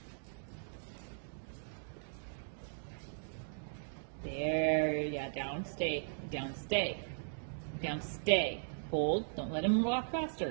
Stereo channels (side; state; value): left; silent; digital silence